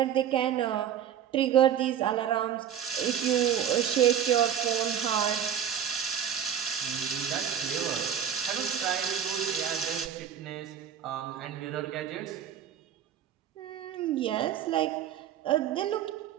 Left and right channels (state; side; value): quieter; left; 9.1 dB